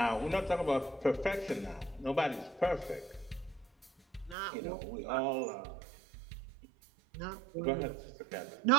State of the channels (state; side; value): drops out; left; at 4.4 s